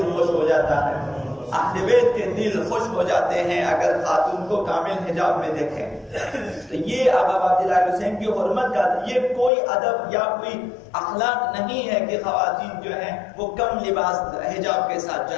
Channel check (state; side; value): drops out; right; at 9.5 s